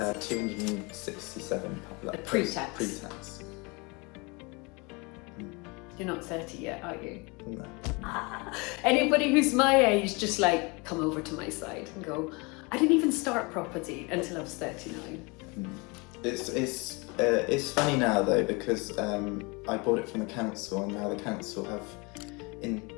pre-tax. Pre-tax. You're not 30 yet, are you? No. Anybody who's my age, just like come over to my side and go, I didn't even start property until I was 39. It's funny now though, because I bought it from the council, and now the council have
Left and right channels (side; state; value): right; quieter; 28.1 dB